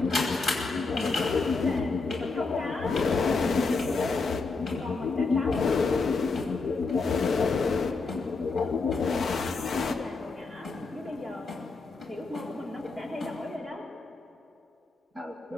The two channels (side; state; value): right; quieter; 4.0 dB